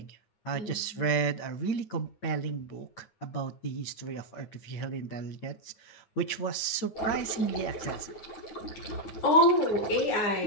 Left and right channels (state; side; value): late; right; 9.3 ms